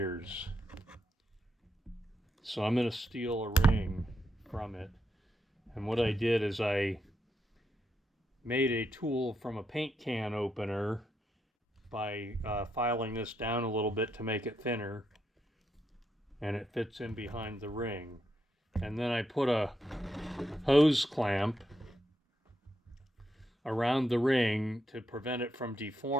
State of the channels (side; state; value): both; normal; correlation 0.81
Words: So I'm going to steal a ring from it. And what I did is I made a tool from a paint can opener by filing this down a little bit to make it thinner, and it fits in behind the ring. And then I put a hose clamp around the ring to prevent it from